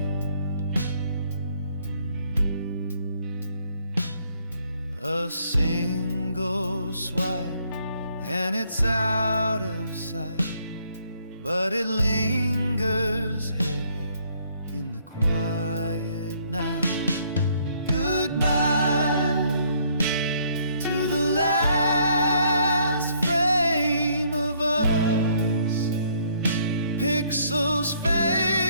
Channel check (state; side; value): inverted; both; correlation -0.66